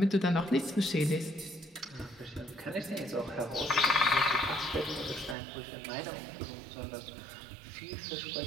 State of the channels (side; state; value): left; drops out; at 5.4 s